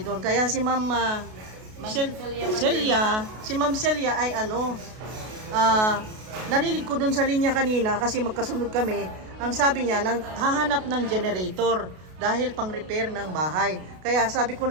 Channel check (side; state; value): left; late; 33 ms